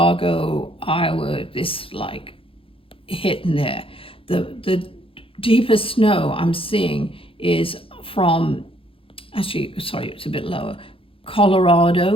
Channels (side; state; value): right; late; 0.26 ms